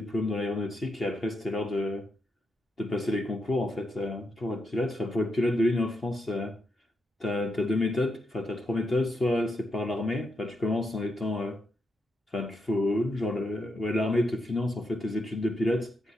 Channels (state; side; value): normal; both; correlation 0.82